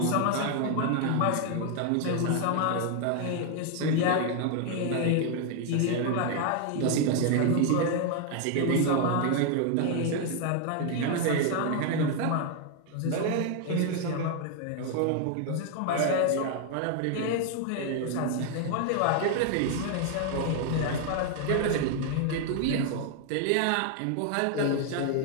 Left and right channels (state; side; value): different; both; correlation 0.00